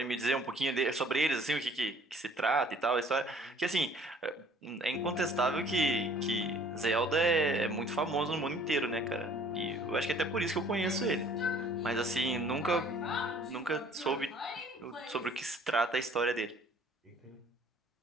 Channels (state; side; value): normal; both; correlation 0.55